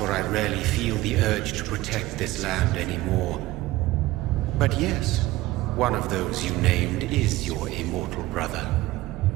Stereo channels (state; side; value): quieter; left; 17.7 dB